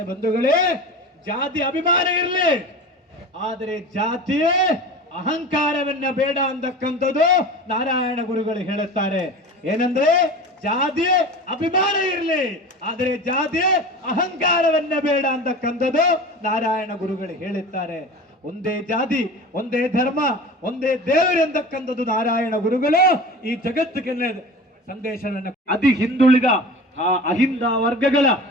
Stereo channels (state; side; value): normal; both; correlation 0.34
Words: ಬಂಧುಗಳೇ, ಜಾತಿ ಅಭಿಮಾನ ಇರಲಿ, ಆದರೆ ಜಾತಿಯೇ ಅಹಂಕಾರವನ್ನ ಬೇಡ ಅಂತಕ್ಕಂಥದ್ದು ನಾರಾಯಣ ಗುರುಗಳು ಹೇಳುತ್ತಾರೆ. ಏನಂದ್ರೆ ಜಾತಿ ಅಭಿಮಾನ ಇರಲಿ, ಆದರೆ ಜಾತಿ ಅಹಂಕಾರವನ್ನ ಬೇಡ ಅಂತಕ್ಕಂಥದ್ದು ನಾರಾಯಣ ಗುರುಗಳು ಹೇಳುತ್ತಾರೆ. ಒಂದೇ ಜಾತಿ, ಒಂದೇ ಧರ್ಮ, ಒಂದೇ ದೇವರು ಎಂದಕ್ಕಂಥದ್ದು ನಾರಾಯಣ ಗುರುಗಳು ಈ ಜಗತ್ತಿಗೆ ಸಂದೇಶವನ್ನು ಅತಿ ಹಿಂದುಳಿದ ಅಹಿಂದ ವರ್ಗಗಳ,